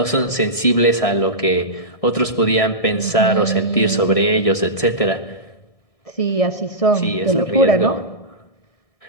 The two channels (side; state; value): right; late; 1.6 ms